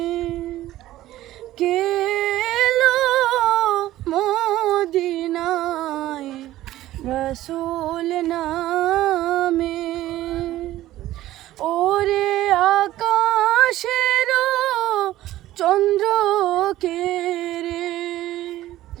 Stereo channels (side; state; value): left; quieter; 14.9 dB